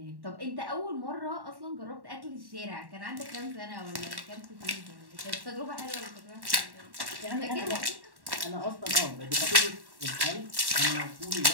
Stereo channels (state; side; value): late; left; 1.1 ms